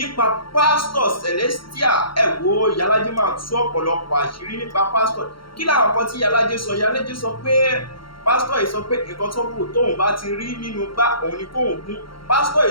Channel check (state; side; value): late; right; 0.73 ms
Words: pásítọ̀ lèsítìà. ẹ wo Ìyálàjé máa tú ọ̀pọ̀lọpọ̀ àṣírí nípa pásítọ̀. kí làwọn kan tí Ìyálàjé sọ? Ìyálàjé sọ pé pásítọ̀ yìí sọ pé nǹkan tó kù tóun bá ti rí nínú gbá òun ni kóun gún. pásítọ̀